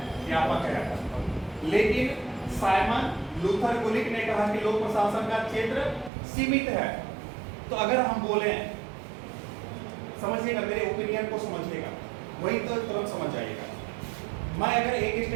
व्यापक है। लेकिन साइमन लूथर गुलिक ने कहा कि लोक प्रशासन का क्षेत्र सीमित है। तो अगर हम बोले, समझिएगा, मेरे ओपिनियन को समझिएगा, वही तो तुरंत समझ जाइएगा। मैं अगर एक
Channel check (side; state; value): left; drops out; at 6.1 s